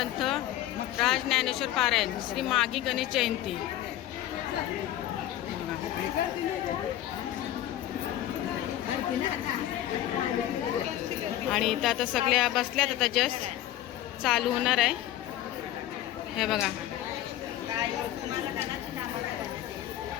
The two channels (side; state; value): right; quieter; 13.3 dB